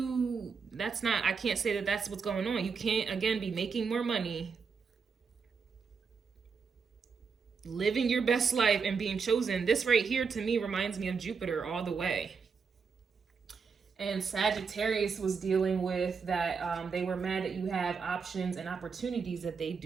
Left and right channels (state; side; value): quieter; left; 5.5 dB